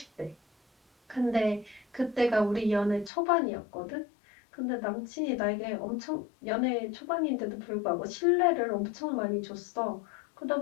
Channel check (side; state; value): right; drops out; at 3.1 s